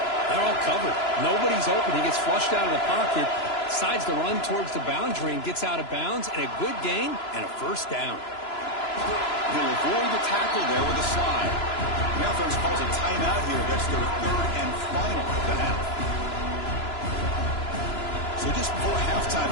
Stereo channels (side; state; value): right; late; 3.0 ms